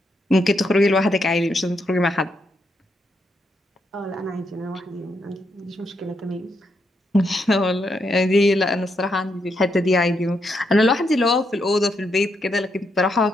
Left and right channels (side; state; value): both; normal; correlation 0.80